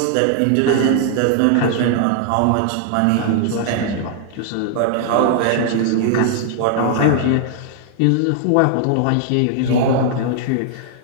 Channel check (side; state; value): both; different; correlation -0.01